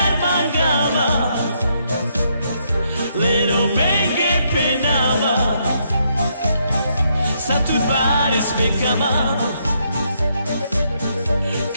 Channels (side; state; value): both; inverted; correlation -0.75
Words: mangava, lero menge penava, sa tu fares me cama.